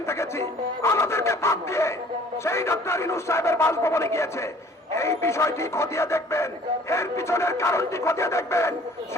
দেখেছি। আমাদেরকে বাদ দিয়ে সেই ডক্টর ইউনূস সাহেবের বাসভবনে গিয়েছে। এই বিষয়টি খতিয়ে দেখবেন, এর পিছনের কারণটি খতিয়ে দেখবেন।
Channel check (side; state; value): both; normal; correlation 0.53